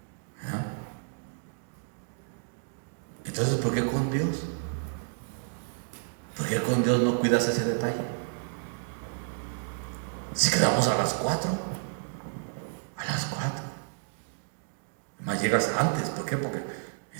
Entonces, ¿por qué con Dios? ¿Por qué con Dios no cuidas ese detalle? Si quedamos a las 4, más llegas antes. ¿Por qué? Porque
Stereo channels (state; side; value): silent; left; digital silence